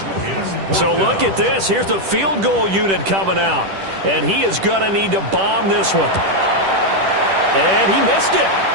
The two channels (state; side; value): late; left; 10 ms